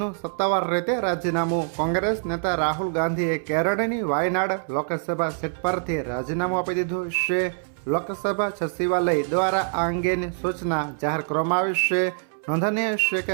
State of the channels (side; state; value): left; silent; 62 dB below the other